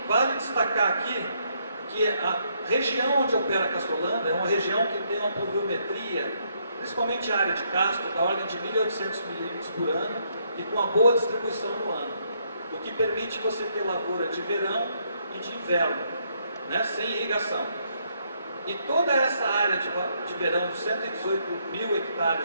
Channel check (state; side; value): inverted; both; correlation -0.73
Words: vale destacar aqui que a região onde opera Castrolanda é uma região que tem uma pluviometria, principalmente a área de Castro, da ordem de 1.800 milímetros por ano e com uma boa distribuição no ano, o que permite você ter lavoura de verão e de inverno, né, sem irrigação. E toda essa área de verão, de 118 mil